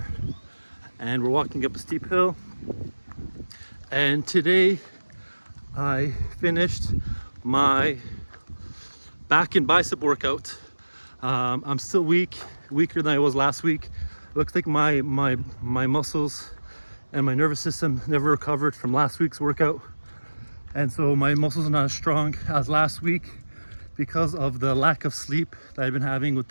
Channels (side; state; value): both; inverted; correlation -1.00